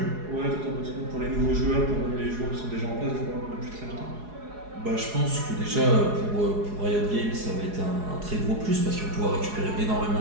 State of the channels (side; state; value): left; late; 4.8 ms